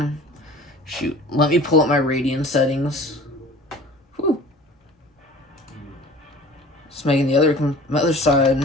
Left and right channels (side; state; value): both; normal; correlation 0.44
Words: up my Radiant settings. Whew. Just making the other